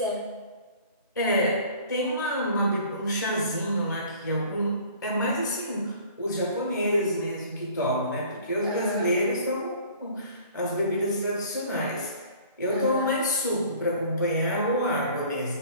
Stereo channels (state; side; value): inverted; both; correlation -0.50